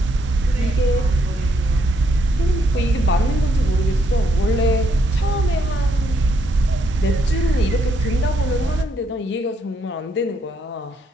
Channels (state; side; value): normal; both; correlation 0.74